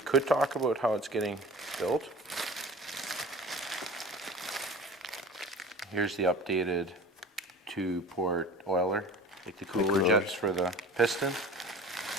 talk about how it's getting built. Here's the updated 2-port oiler, like the cooler jets for the piston.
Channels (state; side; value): normal; both; correlation 0.40